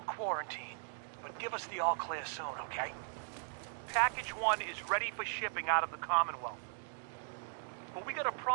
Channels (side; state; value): left; silent; digital silence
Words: quarantine, but give us the all clear soon, okay? Package 1 is ready for shipping out of the Commonwealth. But we got a